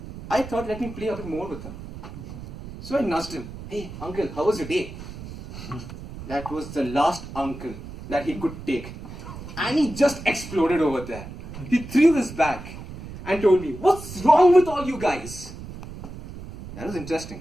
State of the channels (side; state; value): right; noise; rumble, 12 dB below the sound